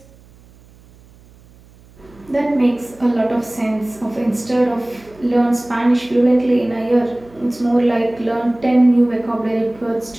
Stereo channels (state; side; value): noise; right; hum, 26 dB below the sound